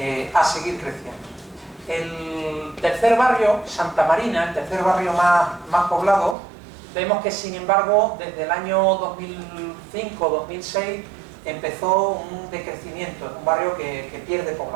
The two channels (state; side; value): drops out; left; at 6.4 s